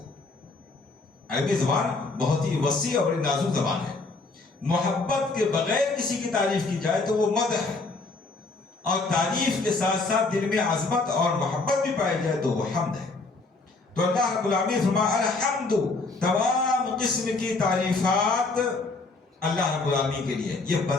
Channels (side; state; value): right; quieter; 3.6 dB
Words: عربی زبان بہت ہی وسیع اور بڑی نازک زبان ہے۔ محبت کے بغیر کسی کی تعریف کی جائے تو وہ مدح ہے، اور تعریف کے ساتھ ساتھ دل میں عظمت اور محبت بھی پائی جائے تو وہ حمد ہے۔ تو اللہ رب العالمین فرمایا الحمد، تمام قسم کی تعریفات اللہ رب العالمین کے لیے۔ یہ